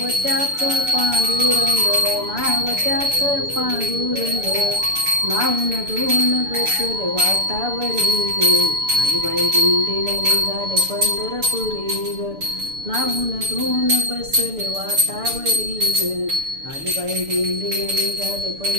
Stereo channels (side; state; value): left; late; 6.9 ms